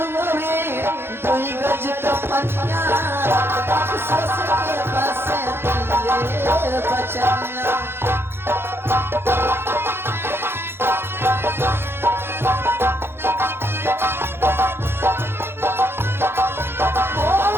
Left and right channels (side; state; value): left; late; 0.11 ms